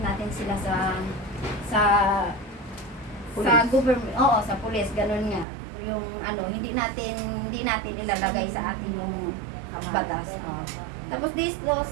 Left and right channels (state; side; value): drops out; left; at 5.5 s